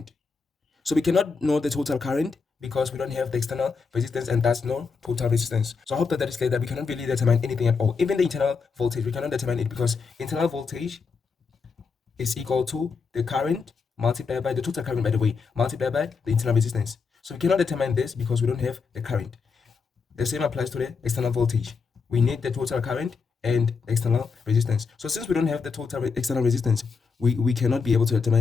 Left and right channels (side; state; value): right; quieter; 5.1 dB